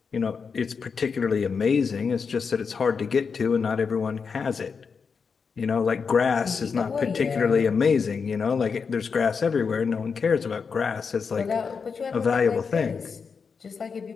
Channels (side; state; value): right; quieter; 5.6 dB